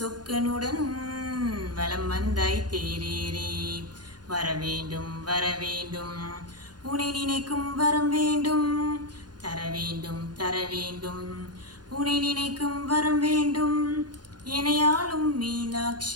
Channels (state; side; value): late; left; 0.70 ms